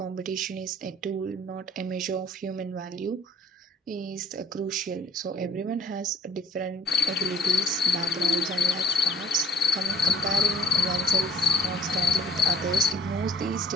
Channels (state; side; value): normal; both; correlation 0.49